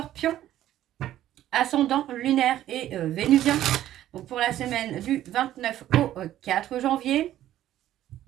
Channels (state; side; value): quieter; left; 12.8 dB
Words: Ascendant, lunaire et vénusien. Donc, pour la semaine du 29 au 4 janvier.